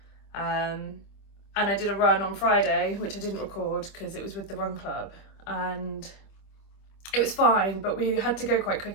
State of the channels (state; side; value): late; right; 26 ms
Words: And I did a run on Friday, which I didn't record because it was with the run club, and it was fine, but we had to go quite